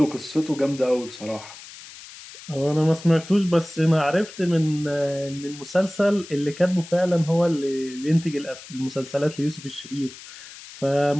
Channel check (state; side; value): noise; left; hiss, 16 dB below the sound